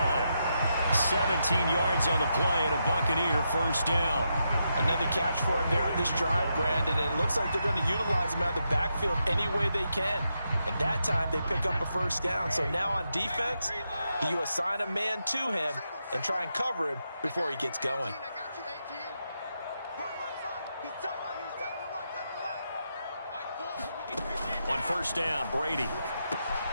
17 yards on the play and a Buccaneer first down. Another catch for him there on this drive, Brandon, and it looks like they're going to utilize him out of the backfield any way they can. And that time they pick up a first down. So now on defense, you assign a man to him and try and cover him before he gets going. On first down, Brady.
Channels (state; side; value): inverted; both; correlation -0.83